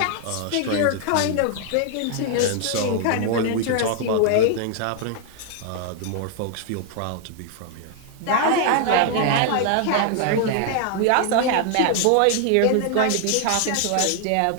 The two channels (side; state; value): both; different; correlation 0.00